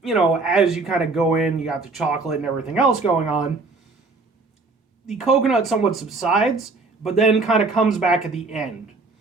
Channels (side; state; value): left; quieter; 3.7 dB